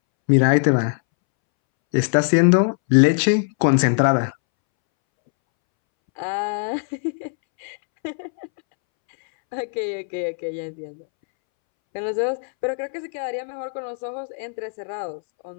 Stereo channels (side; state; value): right; silent; 65 dB below the other